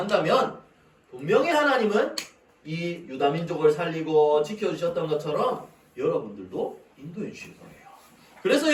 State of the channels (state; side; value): identical; both; correlation 1.00